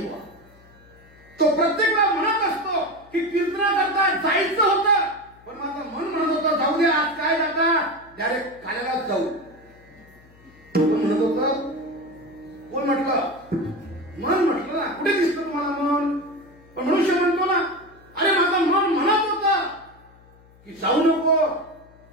तो प्रत्येक वेळा म्हणत असतो की कीर्तनाकरता जायचं होतं, पण माझं मन म्हणत होतं जाऊ दे, आज काय जाता, डायरेक्ट काल्यालाच जाऊ. कोण म्हणत होतं? कोण म्हटलं? मन म्हटलं ना. कुठे दिसतं तुम्हाला मन? पण मनुष्य म्हणतो ना, अरे माझं मन म्हणत होतं की जाऊ नको,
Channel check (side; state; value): left; noise; hum, 26 dB below the sound